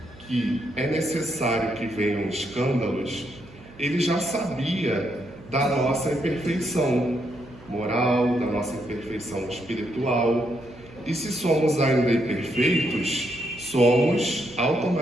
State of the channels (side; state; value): right; noise; hum, 21 dB below the sound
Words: que é necessário que venham escândalos, ele já sabia da nossa imperfeição moral, da nossa imperfeição espiritual. E se somos ainda imperfeitos, somos